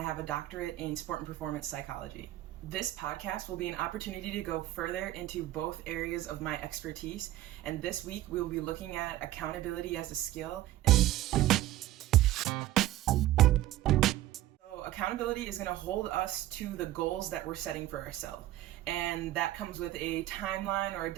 have a doctorate in sport and performance psychology. This podcast will be an opportunity to go further into both areas of my expertise, and this week we will be looking at accountability as a skill. Accountability is going to hold us to the goals that we're setting for ourselves. And that comes with a timeline or a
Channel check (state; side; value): quieter; left; 14.7 dB